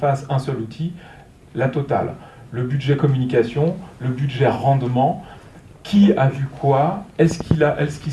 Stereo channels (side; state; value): both; identical; correlation 1.00